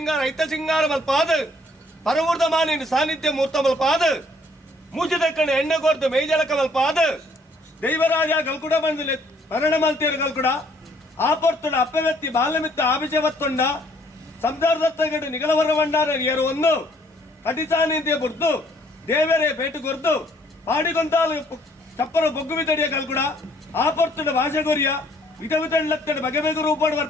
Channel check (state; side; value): normal; both; correlation 0.63